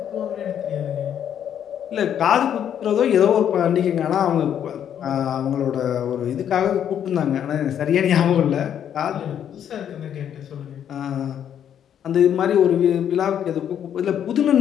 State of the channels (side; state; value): right; quieter; 9.4 dB